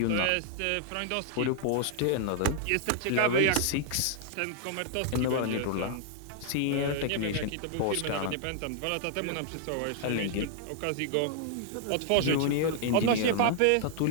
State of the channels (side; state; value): both; different; correlation -0.01